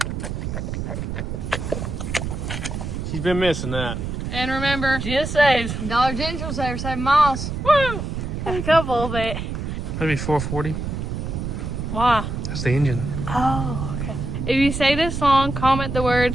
She's been missing that. And remember, GSAs. Dollar General saver, 7 miles. Woo! A couple of it. That'd be 440. Why? That's the engine. Oh, okay. If you say this song, comment the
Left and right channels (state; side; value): noise; right; rumble, 4 dB below the sound